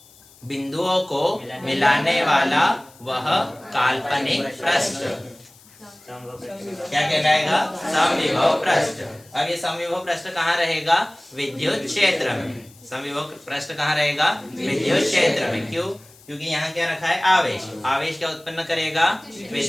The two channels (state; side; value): noise; left; hiss, 26 dB below the sound